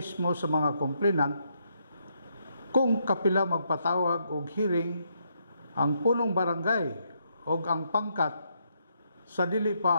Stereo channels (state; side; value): inverted; both; correlation -0.76